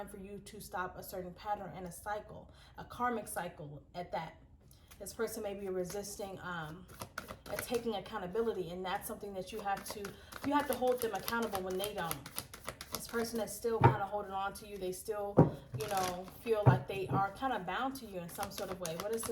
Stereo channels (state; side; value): identical; both; correlation 1.00